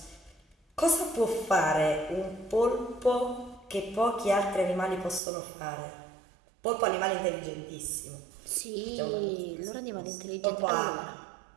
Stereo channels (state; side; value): drops out; left; at 5.2 s